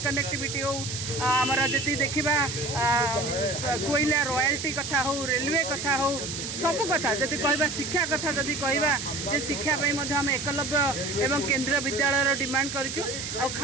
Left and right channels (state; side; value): noise; right; hiss, 6 dB below the sound